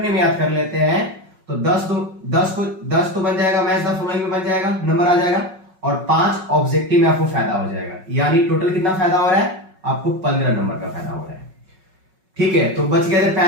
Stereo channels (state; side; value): late; left; 5.4 ms